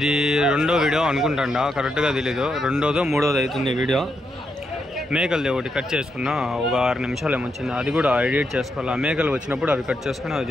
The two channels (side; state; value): both; normal; correlation 0.82